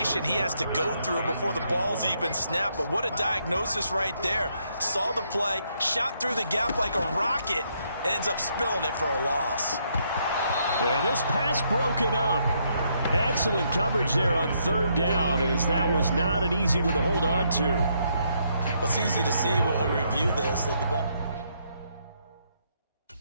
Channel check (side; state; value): both; inverted; correlation -0.74